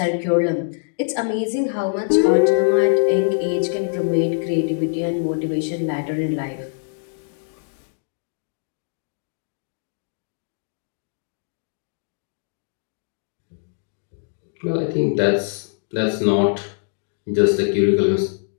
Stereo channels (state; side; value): silent; right; digital silence